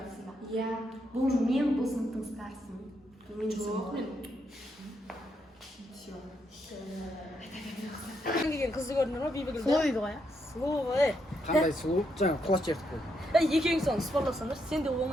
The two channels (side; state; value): both; normal; correlation 0.78